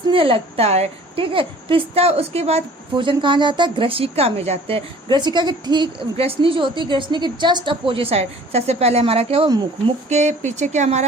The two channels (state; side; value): normal; both; correlation 0.50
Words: लगता है। ठीक है, पिसता, उसके बाद भोजन कहाँ जाता है? ग्रसिका में जाते हैं। ग्रसिका के ठीक ग्रसनी जो होती है, ग्रसनी के जस्ट अपोजिट साइड सबसे पहले हमारा क्या हुआ? मुख के पीछे क्या